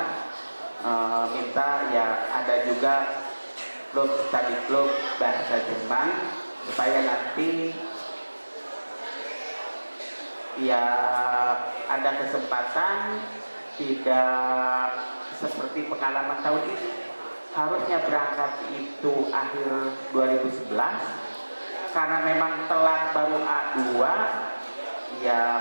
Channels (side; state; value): both; inverted; correlation -1.00